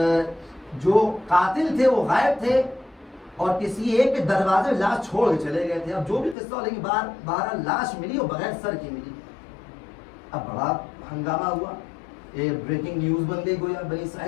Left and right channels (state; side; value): drops out; right; at 6.4 s